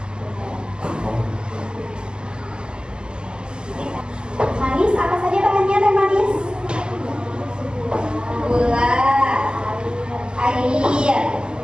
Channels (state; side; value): late; left; 0.050 ms